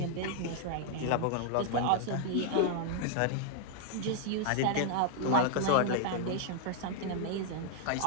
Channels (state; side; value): different; both; correlation 0.00